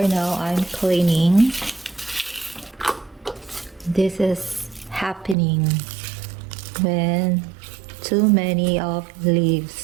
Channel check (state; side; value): drops out; left; at 5.4 s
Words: now I'm cleaning. This is happening when too many of